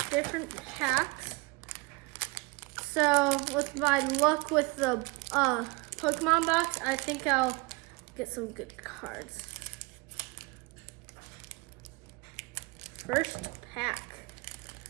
different packs. So with my luck with the Pokemon box, I think I'll get some good cards. First pack.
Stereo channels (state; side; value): quieter; left; 26.6 dB